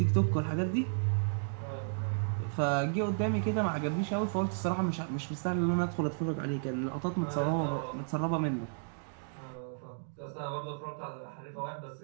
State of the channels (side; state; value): left; silent; digital silence